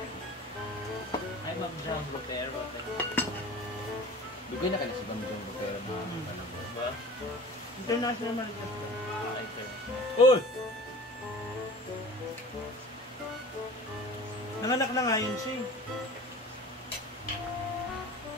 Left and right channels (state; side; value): normal; both; correlation 0.40